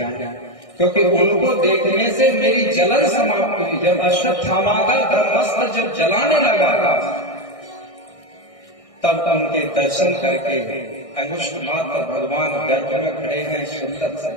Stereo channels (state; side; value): late; right; 1.6 ms